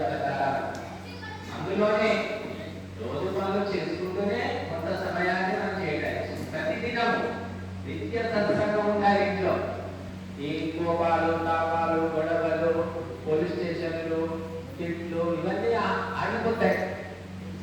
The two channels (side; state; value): both; identical; correlation 1.00